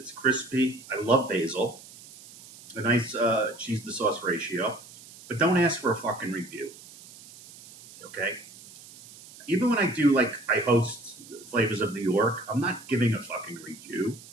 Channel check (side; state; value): right; noise; hiss, 19 dB below the sound